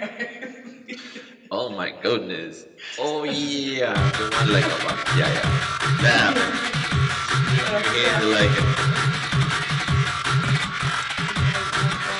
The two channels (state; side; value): identical; both; correlation 1.00